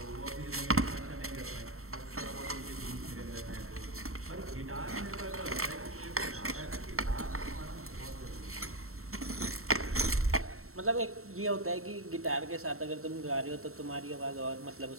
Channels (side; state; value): left; late; 0.63 ms